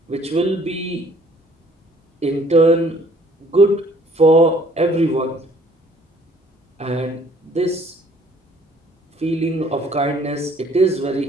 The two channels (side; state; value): both; normal; correlation 0.59